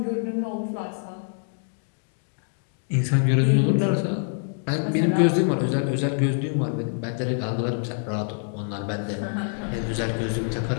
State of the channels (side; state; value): right; silent; 61 dB below the other